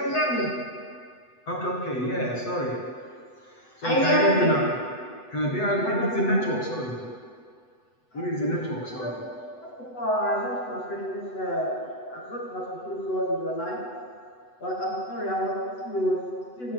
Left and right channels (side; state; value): right; late; 8.0 ms